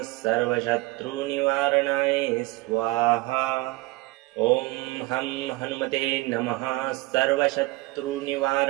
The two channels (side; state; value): left; quieter; 20.7 dB